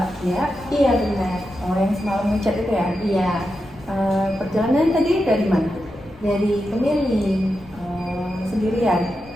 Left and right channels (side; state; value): left; noise; rumble, 24 dB below the sound